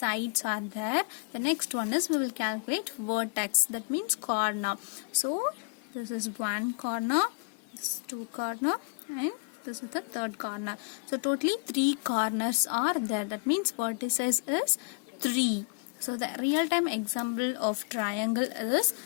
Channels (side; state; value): right; quieter; 36.2 dB